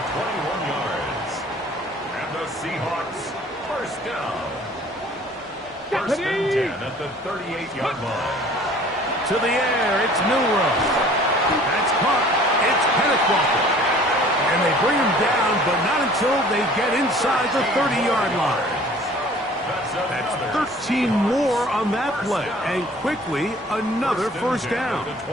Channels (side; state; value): both; normal; correlation 0.50